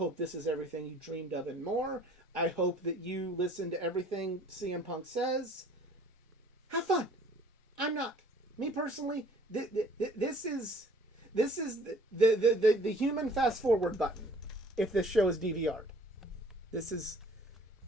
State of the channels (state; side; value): normal; both; correlation 0.54